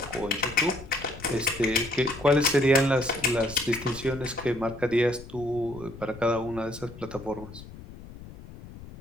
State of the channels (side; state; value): left; noise; rumble, 16 dB below the sound